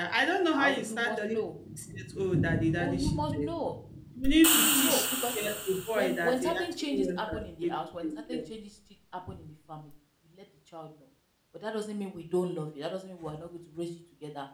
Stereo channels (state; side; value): identical; both; correlation 1.00